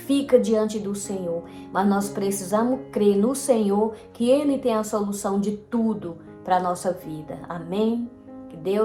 diante do Senhor. Mas nós precisamos crer no Senhor, que Ele tem a solução de tudo para a nossa vida. Amém? Que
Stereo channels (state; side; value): identical; both; correlation 1.00